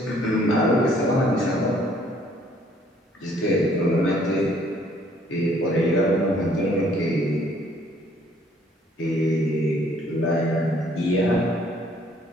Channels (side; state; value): both; normal; correlation 0.62